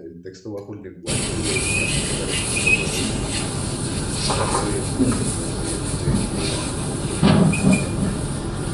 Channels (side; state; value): both; identical; correlation 1.00